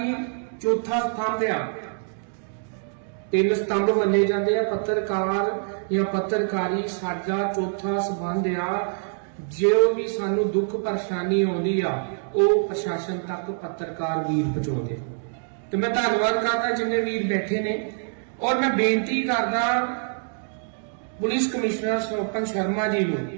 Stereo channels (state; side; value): silent; left; digital silence